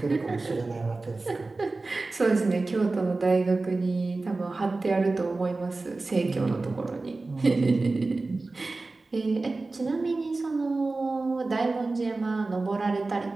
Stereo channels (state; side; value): quieter; left; 3.4 dB